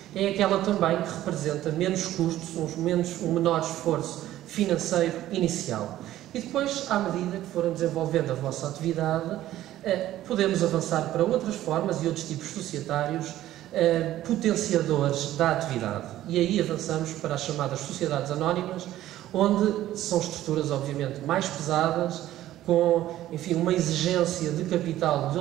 é aquela também que representa menos custos, um menor esforço financeiro inicial. E depois, à medida que forem desenvolvendo a vossa atividade, podemos avançar para outras formas e outros tipos societários potenciadores da atividade. E aí avançamos para as chamadas sociedades anónimas, onde são estruturas, obviamente, mais pesadas, com, enfim, uma exigência de capital de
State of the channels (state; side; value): quieter; left; 13.8 dB